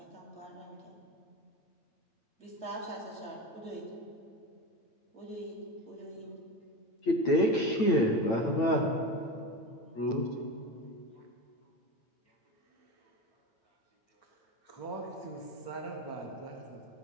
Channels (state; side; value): late; right; 8.9 ms